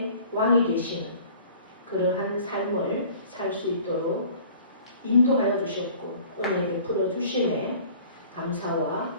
왕이 되시는 그러한 삶을 살 수 있도록 인도하여 주셨고 은혜 베풀어 주심에 감사와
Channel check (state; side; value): inverted; both; correlation -0.49